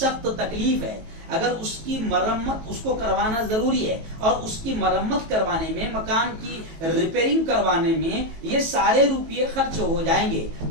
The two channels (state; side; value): late; left; 18 ms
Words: तकलीफ है, अगर उसकी मरम्मत उसको करवाना जरूरी है और उसकी मरम्मत करवाने में, मकान की रिपेयरिंग करवाने में ये सारे रुपये खर्च हो जाएंगे